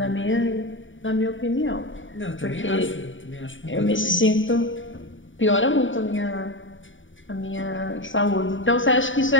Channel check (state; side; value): late; right; 0.56 ms